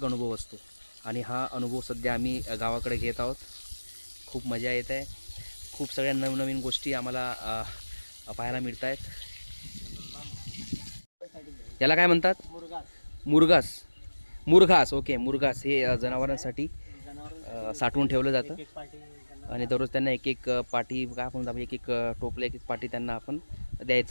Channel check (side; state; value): both; inverted; correlation -1.00